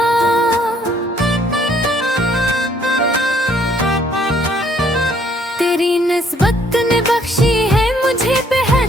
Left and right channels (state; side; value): normal; both; correlation 0.64